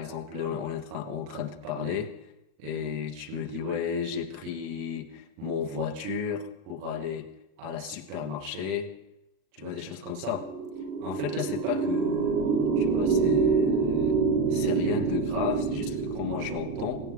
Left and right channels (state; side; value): late; left; 39 ms